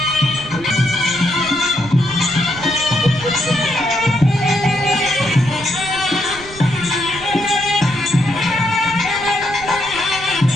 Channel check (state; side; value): noise; right; rumble, 17 dB below the sound